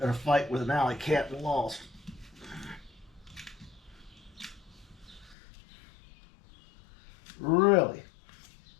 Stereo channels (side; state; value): right; drops out; at 5.4 s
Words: a fight with an alley cat and lost.